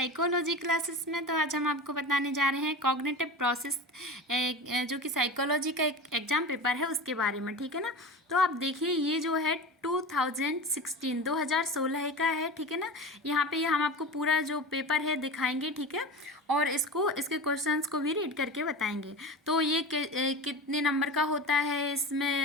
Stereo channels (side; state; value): both; normal; correlation 0.30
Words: क्लासेस में। तो आज हम आपको बताने जा रहे हैं कॉग्निटिव प्रोसेस, जो कि साइकोलॉजी का एक एग्जाम पेपर है उसके बारे में। ठीक है ना। तो आप देखिए, ये जो है 2016 का है। ठीक है ना। यहाँ पे ये हम आपको पूरा जो पेपर है दिखाएंगे। ठीक है। और इसके क्वेश्चंस को भी रीड करके बताएंगे। तो ये कितने नंबर का होता है,